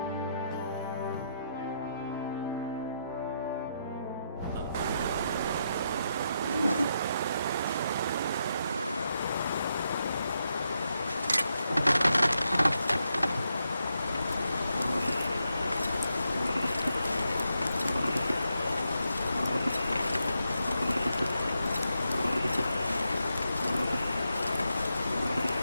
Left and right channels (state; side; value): inverted; both; correlation -0.82